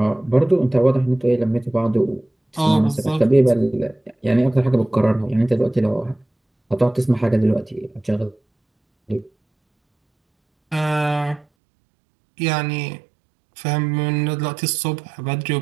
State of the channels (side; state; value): left; drops out; at 11.5 s